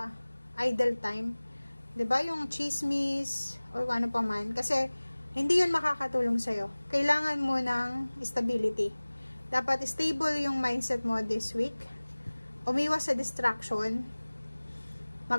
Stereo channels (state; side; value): inverted; both; correlation -1.00